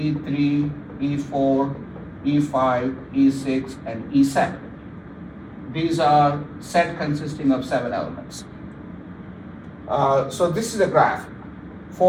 E4, E5, E6, and E7. These are set consisting of 7 elements. So this is a graph.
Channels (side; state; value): both; identical; correlation 1.00